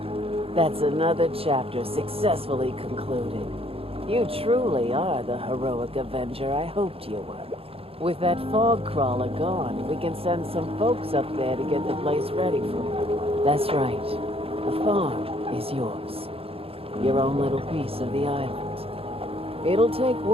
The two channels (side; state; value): left; late; 0.27 ms